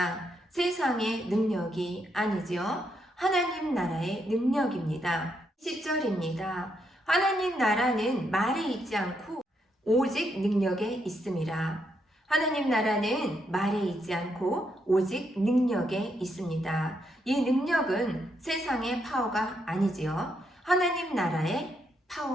세상의 능력이 아니지요. 하나님 나라의 능력입니다. 10절입니다. 하나님 나라는 말에 있지 않고 오직 능력에 있습니다. 하나님 나라는 말에 있지 않고 오직 능력에 있습니다. 이 능력은 세상의 파워가 아니지요. 하나님 나라의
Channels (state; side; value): normal; both; correlation 0.78